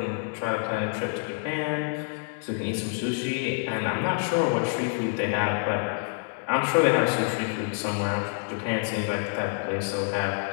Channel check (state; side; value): silent; right; 58 dB below the other